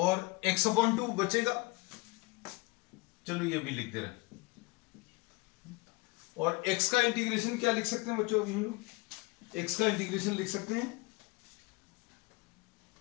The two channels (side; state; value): right; quieter; 24.6 dB